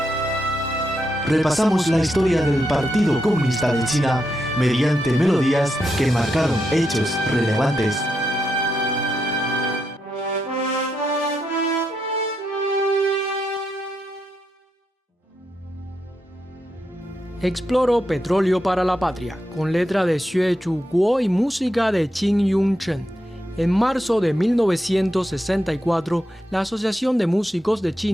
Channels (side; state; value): both; normal; correlation 0.83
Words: Repasamos la historia del Partido Comunista de China mediante melodías que marcaron hechos relevantes. Exploro Petróleo para la Patria, con letra de Xue Chuguo y música de Qin Yongchen. En marzo de 1964, la Asociación de Músicos de